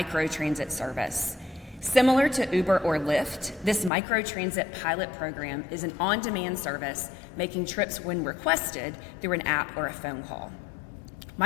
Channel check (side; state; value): right; drops out; at 3.9 s